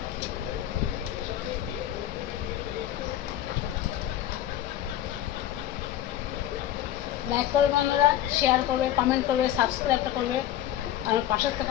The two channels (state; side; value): quieter; right; 12.4 dB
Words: লাইক করবে বন্ধুরা শেয়ার করবে কমেন্ট করবে সাবস্ক্রাইবটা করবে আমার পাশের থেকে